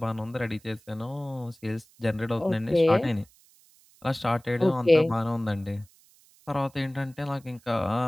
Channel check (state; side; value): noise; right; hiss, 29 dB below the sound